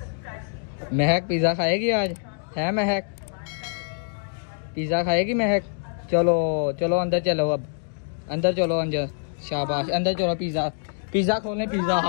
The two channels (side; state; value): right; silent; digital silence